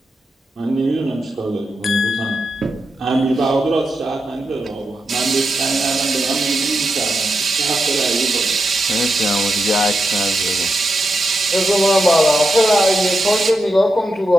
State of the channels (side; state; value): both; normal; correlation 0.86